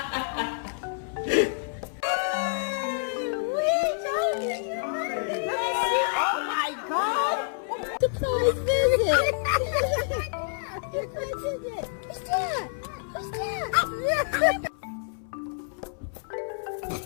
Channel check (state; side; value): silent; right; 59 dB below the other